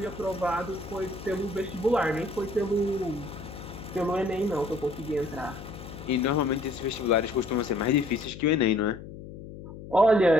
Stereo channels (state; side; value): noise; left; hum, 13 dB below the sound